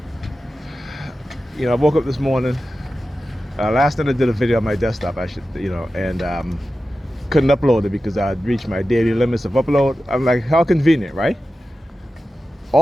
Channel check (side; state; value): both; normal; correlation 0.93